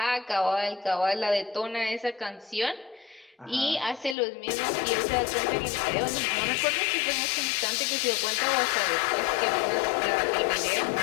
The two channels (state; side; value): drops out; right; at 4.2 s